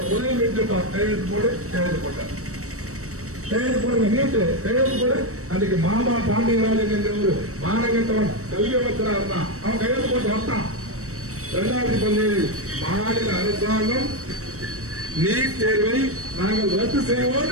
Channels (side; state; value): left; late; 0.65 ms